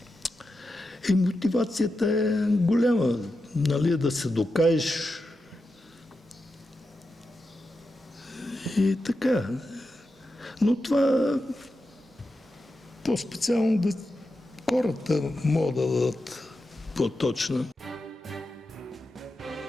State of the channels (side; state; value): both; normal; correlation 0.89